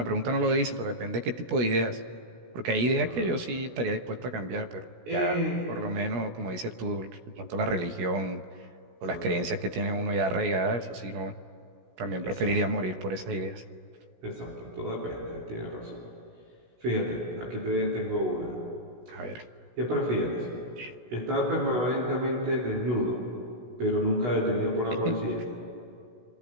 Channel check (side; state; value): left; late; 16 ms